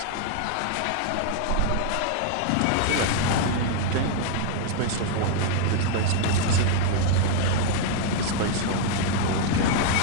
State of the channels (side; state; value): both; different; correlation 0.00